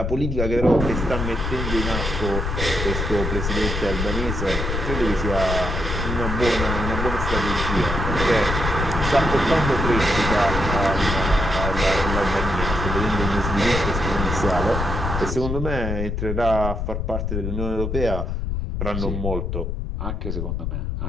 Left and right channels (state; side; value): noise; left; rumble, 2 dB below the sound